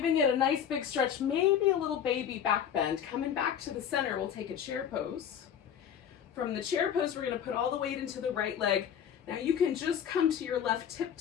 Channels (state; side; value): quieter; right; 8.7 dB